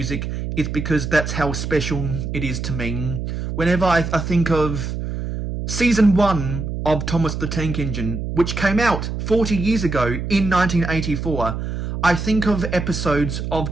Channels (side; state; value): right; noise; hum, 4 dB below the sound